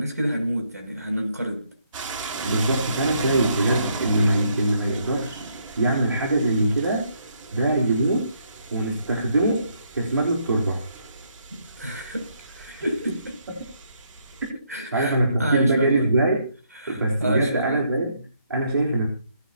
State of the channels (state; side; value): inverted; both; correlation -0.72